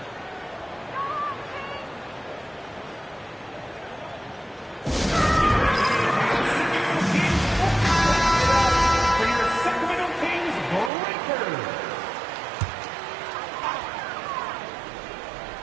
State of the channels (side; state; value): left; drops out; at 10.9 s